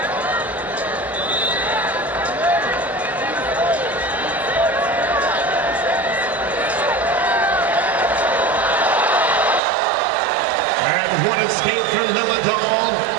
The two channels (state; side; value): drops out; left; at 9.6 s